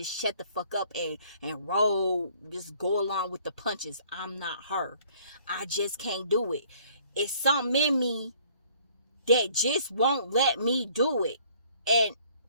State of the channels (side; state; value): both; inverted; correlation -0.59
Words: shut the fuck up and roll, just go along with the punches. I'm not her. I just can't do it. It's something in me that just won't let me do it. And